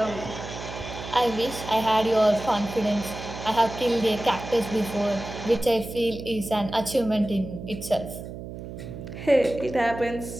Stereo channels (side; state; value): right; noise; hum, 10 dB below the sound